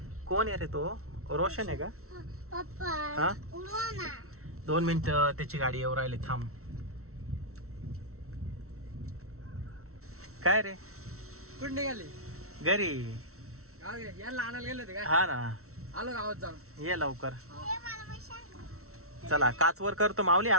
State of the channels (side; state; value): left; late; 0.63 ms